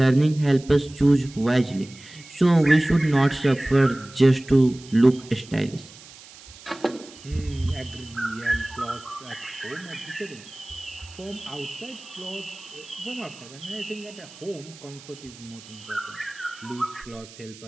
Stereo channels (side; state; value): right; noise; hiss, 20 dB below the sound